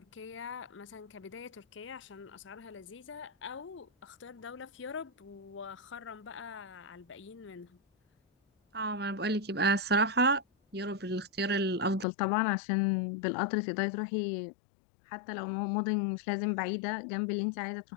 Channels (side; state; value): right; drops out; at 12.1 s